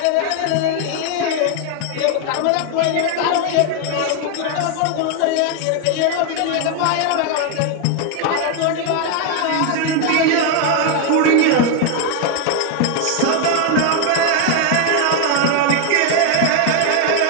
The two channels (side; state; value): both; different; correlation 0.01